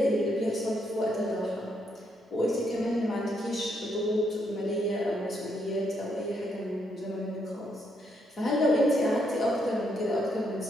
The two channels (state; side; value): normal; both; correlation 0.76